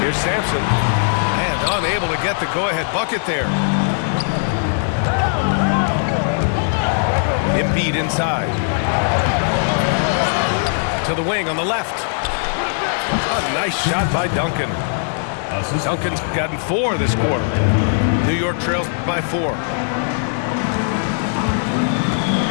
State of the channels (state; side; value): silent; right; digital silence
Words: Here's Sampson, and unable to get the go-ahead bucket there. Embiid inside. To the wing on the left. A nice shot by Duncan. Duncan's gotten 4 this quarter. New York trails by 4.